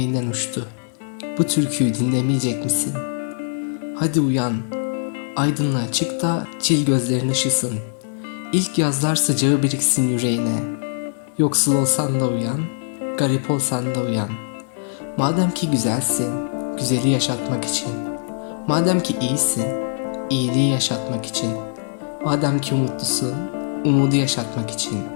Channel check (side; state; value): right; silent; digital silence